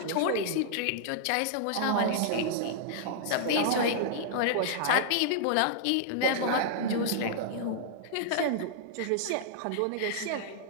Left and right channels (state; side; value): different; both; correlation -0.01